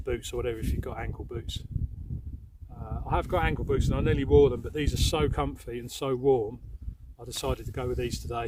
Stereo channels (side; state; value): both; identical; correlation 1.00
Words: or whatever if you've got ankle boots. I have got ankle boots and I nearly wore them, but these are so comfy and so warm I decided to go with these